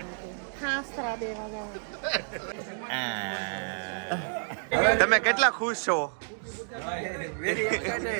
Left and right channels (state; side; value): silent; left; digital silence